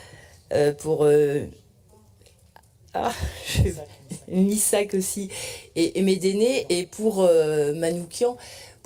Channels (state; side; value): identical; both; correlation 1.00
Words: pour Missak aussi, et Médéné, et pour Manoukian,